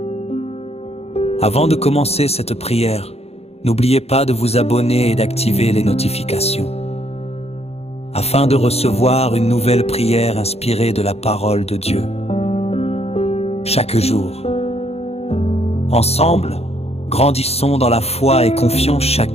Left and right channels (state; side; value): late; right; 0.30 ms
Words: Avant de commencer cette prière, n'oubliez pas de vous abonner et d'activer les notifications, afin de recevoir une nouvelle prière inspirée de la parole de Dieu. Chaque jour, ensemble, grandissons dans la foi et confions